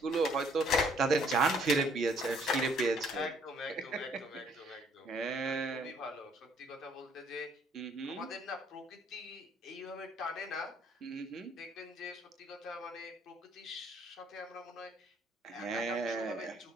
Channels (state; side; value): normal; both; correlation 0.63